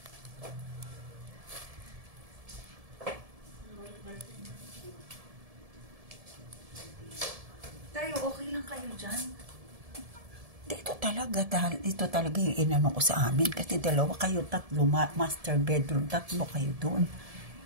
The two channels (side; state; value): left; late; 1.7 ms